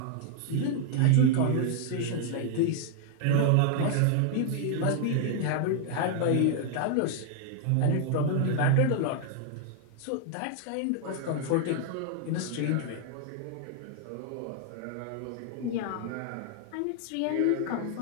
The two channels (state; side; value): different; both; correlation 0.00